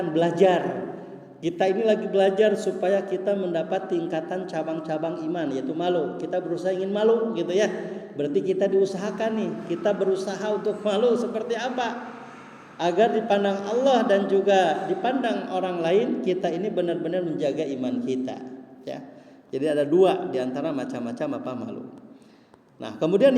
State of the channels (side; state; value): both; identical; correlation 1.00